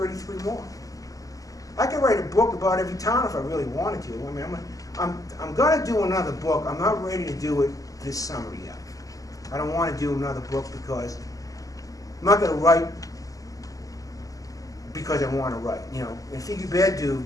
more. I could write a book about every town if I really wanted to. I mean, I'm going to do another book. I'm not ready to do it this summer yet. I don't want to do another book because I'm not going to write because I want to write. In Figghiu Beddu,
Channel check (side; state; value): right; late; 0.17 ms